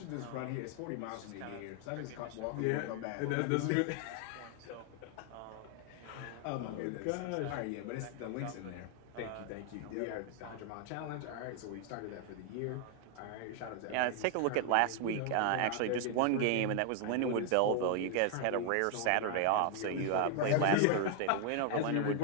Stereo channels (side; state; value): both; different; correlation 0.00